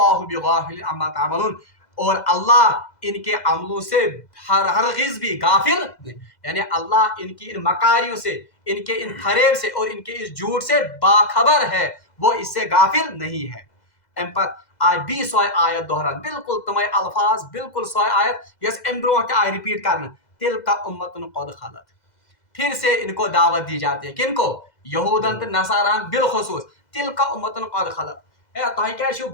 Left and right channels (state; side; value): late; right; 2.0 ms